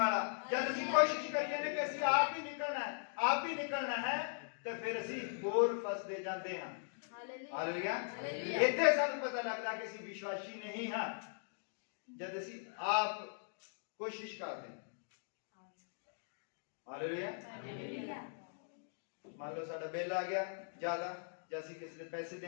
ਜਦ ਅਸੀਂ ਕੋਸ਼ਿਸ਼ ਕਰੀਏ ਨੇ ਕਿ ਅਸੀਂ ਆਪ ਹੀ ਨਿਕਲਣਾ ਹੈ, ਆਪ ਹੀ ਨਿਕਲਣਾ ਹੈ, ਤੇ ਫਿਰ ਅਸੀਂ ਹੋਰ ਫਸਦੇ ਜਾਂਦੇ ਹਾਂ। ਹਾਲੇਲੂਇਆ। ਇੱਥੇ ਸਾਨੂੰ ਪਤਾ ਲੱਗਦਾ ਕਿ ਅਸੀਂ ਵਿਸ਼ਵਾਸੀ ਨਹੀਂ ਹਾਂ, ਜਦ ਅਸੀਂ ਆਪ ਕੋਸ਼ਿਸ਼ ਕਰਦੇ ਹਾਂ। ਹਾਲੇਲੂਇਆ। ਮੰਨ ਲਓ ਸਾਡਾ ਬਿੱਲ ਆ ਗਿਆ ਜ਼ਿਆਦਾ, ਜਾਂ ਅਸੀਂ ਕਿਸੇ ਦੇ ਪੈਸੇ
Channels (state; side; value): silent; right; digital silence